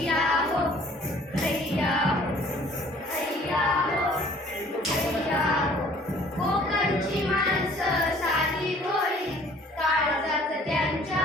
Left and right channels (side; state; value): both; normal; correlation 0.54